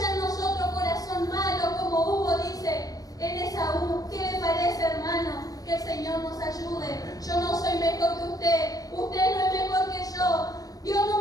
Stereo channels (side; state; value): right; late; 0.18 ms